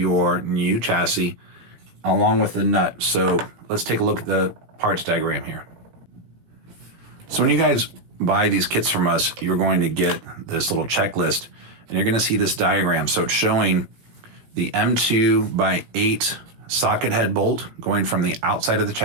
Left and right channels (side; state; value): left; late; 17 ms